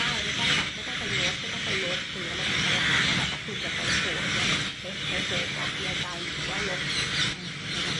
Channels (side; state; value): both; identical; correlation 1.00